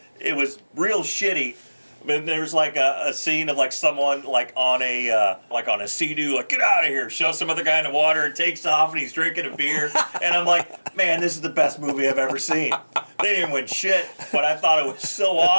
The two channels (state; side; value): inverted; both; correlation -1.00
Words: real shitty. But there was like a scene of like someone like on a Sea-Doo, like, get out of here, shows some other guy in the water and takes off and he's drinking a beer. And I'm like, man, this is the best movie I've ever seen. They didn't win shit, but I thought it was so